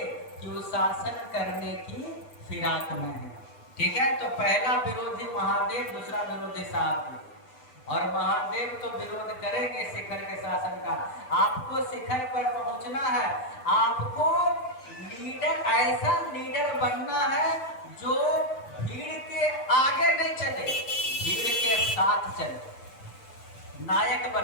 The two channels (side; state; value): right; late; 7.8 ms